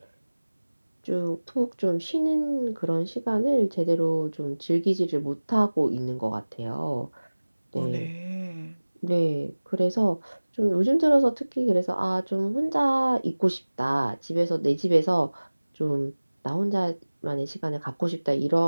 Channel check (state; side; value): inverted; both; correlation -1.00